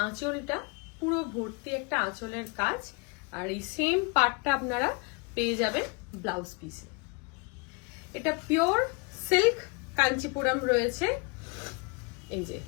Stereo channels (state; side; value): quieter; right; 31.7 dB